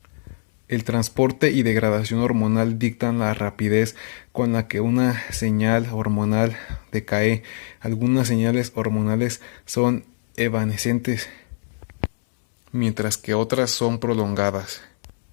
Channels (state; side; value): silent; right; digital silence